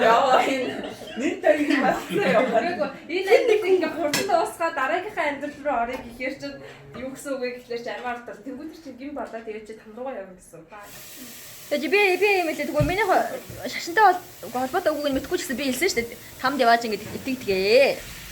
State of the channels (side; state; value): both; identical; correlation 1.00